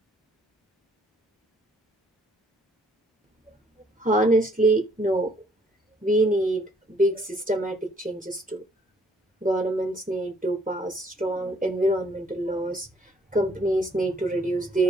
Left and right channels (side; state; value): both; normal; correlation 0.65